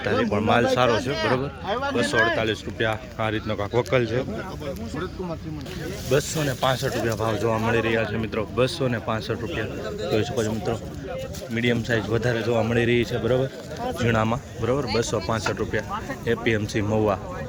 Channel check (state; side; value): identical; both; correlation 1.00